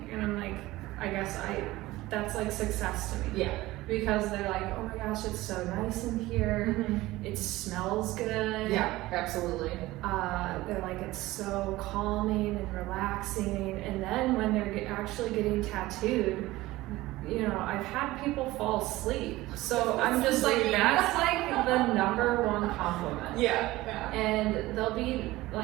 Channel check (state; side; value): quieter; left; 18.2 dB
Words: and I'm like, I guess that's like success to me. Yeah. Because they're like, oh my gosh, it's so nice in here. It smells good. Yeah, absolutely. They're like, it's so calming and relaxing. And then when they're actually getting tattooed, I've had people fall asleep. So I'm just like, that's like the number one compliment. Yeah. And they'll be